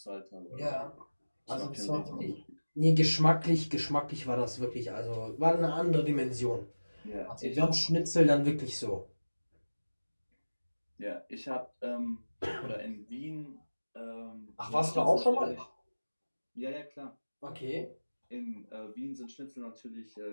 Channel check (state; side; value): inverted; both; correlation -1.00